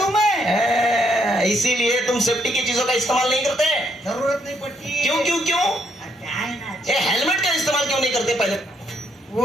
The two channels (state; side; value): normal; both; correlation 0.73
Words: मैं। इसीलिए तुम सेफ्टी की चीजों का इस्तेमाल नहीं करते? जरूरत नहीं पड़ती। क्यों क्यों क्यों? क्या है ना, ये हेलमेट का इस्तेमाल क्यों नहीं करते पहले?